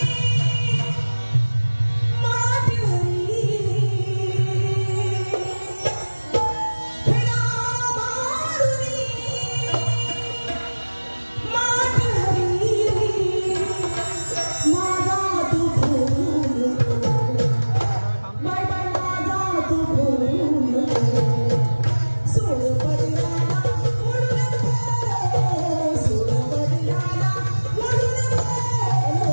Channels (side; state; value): both; inverted; correlation -1.00